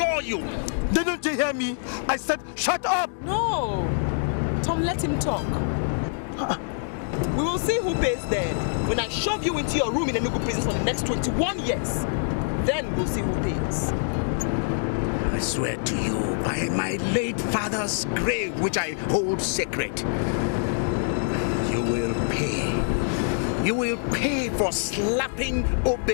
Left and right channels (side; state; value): right; silent; digital silence